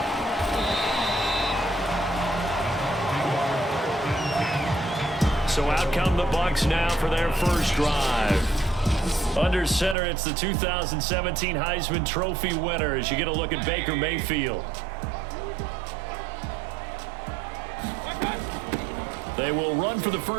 So out come the Bucs now for their first drive. Under center, it's the 2017 Heisman Trophy winner as you get a look at Baker Mayfield. They will run for the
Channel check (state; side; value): drops out; left; at 10.0 s